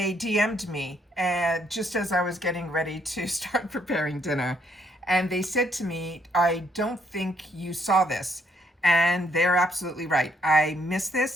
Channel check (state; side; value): normal; both; correlation 0.71